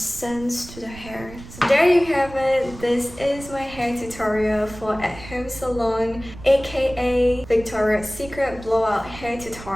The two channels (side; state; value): right; noise; rumble, 16 dB below the sound